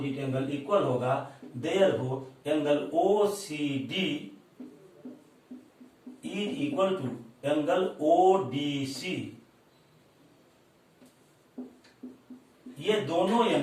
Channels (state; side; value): identical; both; correlation 1.00